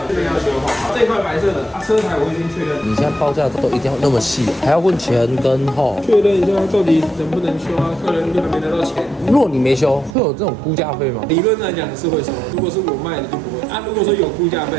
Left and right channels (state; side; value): drops out; left; at 10.2 s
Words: 这边要修好。这一块白色的，车牌我已经确认。你现在报价都一定要那么细，还要问前跟后，确认一下到底能不能修啊？客人还没拿到钱。如果你没修，会有这种估价费吗？理论来讲是会收，如果是我卖的就不会啊。如果说有估价费